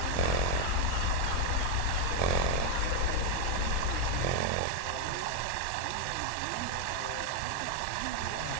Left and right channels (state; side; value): different; both; correlation 0.01